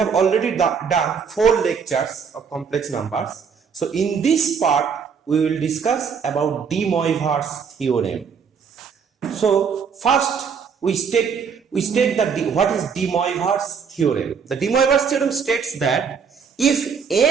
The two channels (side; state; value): left; quieter; 6.3 dB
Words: already done 4 lectures of complex numbers. So in this part we will discuss about De Moivre's theorem. So first we state that what is De Moivre's theorem. The De Moivre's theorem states that if